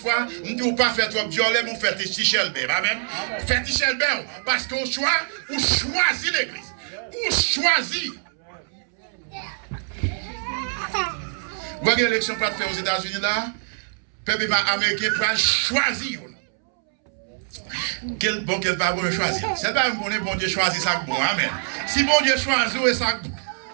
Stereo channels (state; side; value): silent; left; 63 dB below the other